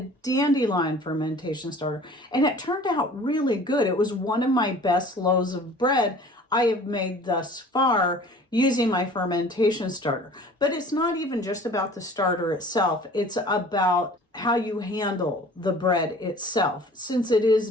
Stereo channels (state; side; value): normal; both; correlation 0.47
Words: fermentation starter, and it turned out really good. It was one of my best loaves of bread I have made thus far using my fermentation starter. But it's not even just about the starter itself. It's about how you handle the bread itself, since it is